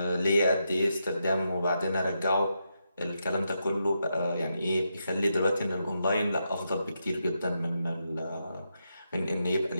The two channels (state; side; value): inverted; both; correlation -0.84